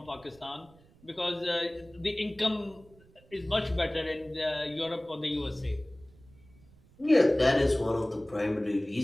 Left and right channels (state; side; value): noise; right; rumble, 27 dB below the sound